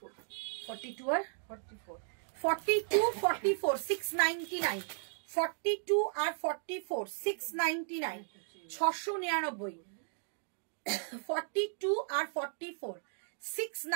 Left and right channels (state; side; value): silent; left; digital silence